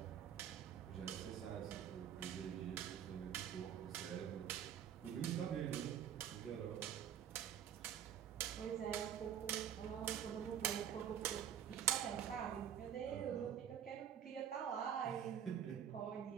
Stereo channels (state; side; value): quieter; left; 9.3 dB